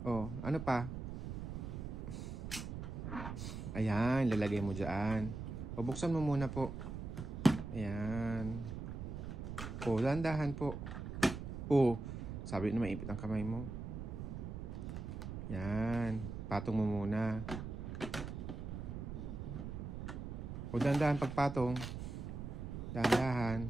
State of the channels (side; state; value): right; noise; rumble, 6 dB below the sound